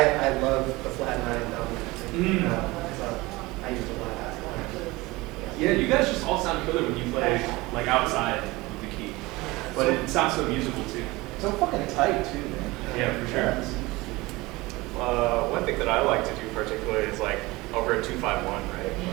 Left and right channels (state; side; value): quieter; left; 21.4 dB